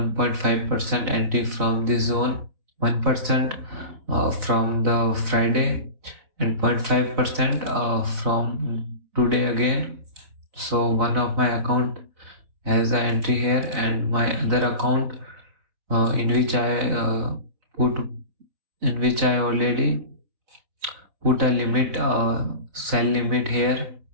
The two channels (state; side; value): late; left; 4.1 ms